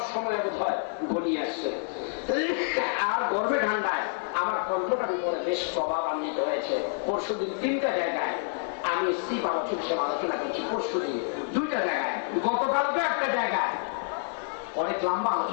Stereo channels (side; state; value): right; silent; 59 dB below the other